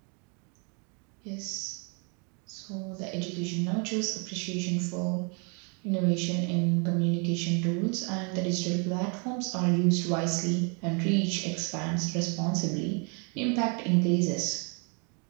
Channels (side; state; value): left; quieter; 35.9 dB